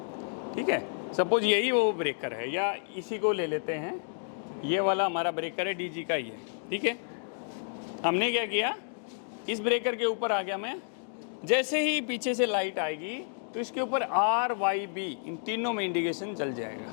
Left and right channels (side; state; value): right; silent; digital silence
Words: ठीक है, सपोज यही वो ब्रेकर है, या इसी को ले लेते हैं, ये वाला हमारा ब्रेकर है, डीजी का ही है। ठीक है, हमने क्या किया, इस ब्रेकर के ऊपर आ गया मैं। जैसे ही पीछे से लाइट आएगी तो इसके ऊपर RYB इन तीनों में इंडिकेशन जल जाएगा।